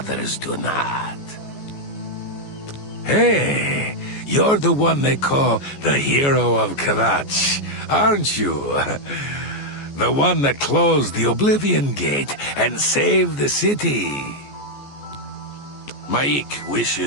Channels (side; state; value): right; late; 14 ms